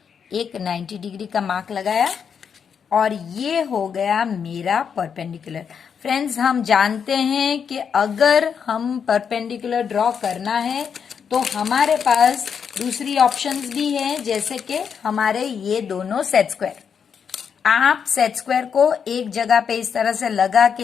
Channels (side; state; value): right; quieter; 7.0 dB